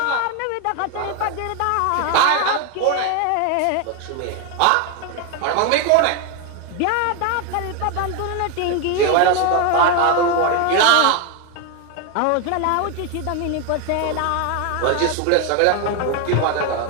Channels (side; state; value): both; different; correlation 0.01